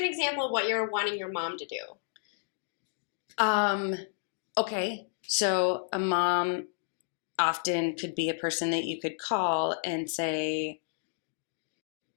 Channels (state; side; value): silent; right; digital silence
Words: example of what you're wanting your mom to do. Okay. So a mom often could be a person that you could call and say,